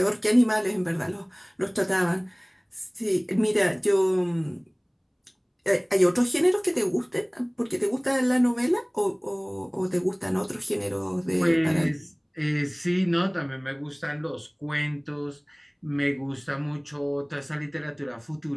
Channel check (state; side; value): identical; both; correlation 1.00